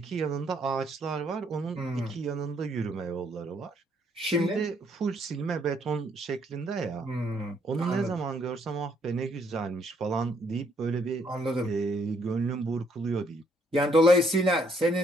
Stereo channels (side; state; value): both; normal; correlation 0.69